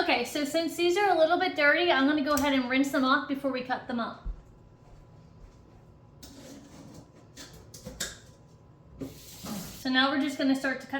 so since these are a little bit dirty, I'm gonna go ahead and rinse them off before we cut them up. So now we're just gonna start to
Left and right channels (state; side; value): identical; both; correlation 1.00